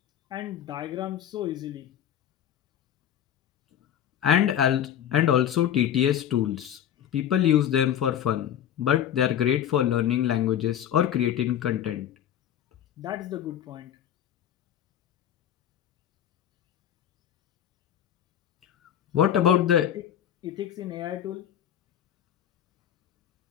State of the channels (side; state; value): right; quieter; 10.2 dB